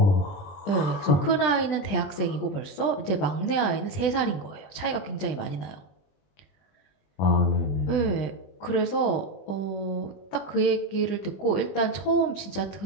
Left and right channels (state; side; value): late; right; 20 ms